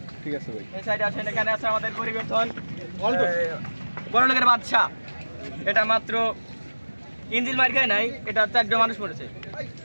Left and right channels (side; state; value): both; inverted; correlation -1.00